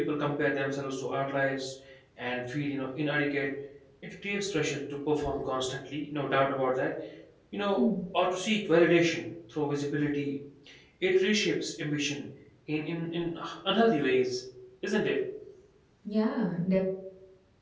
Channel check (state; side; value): identical; both; correlation 1.00